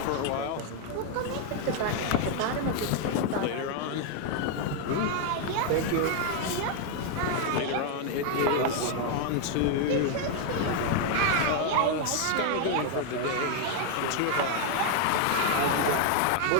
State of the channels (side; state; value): both; different; correlation 0.00